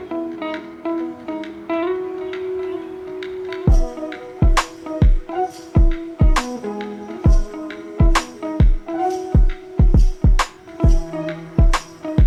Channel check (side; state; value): both; identical; correlation 1.00